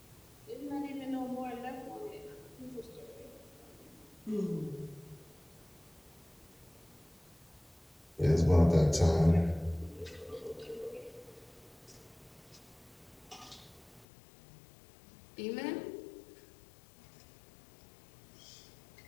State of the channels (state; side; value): drops out; right; at 14.1 s